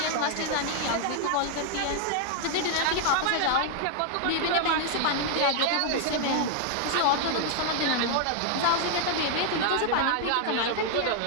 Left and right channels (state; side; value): different; both; correlation 0.00